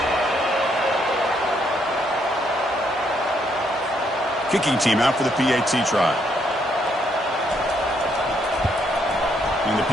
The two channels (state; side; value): normal; both; correlation 0.73